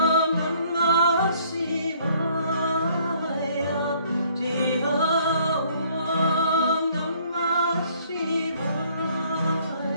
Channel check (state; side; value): inverted; both; correlation -0.60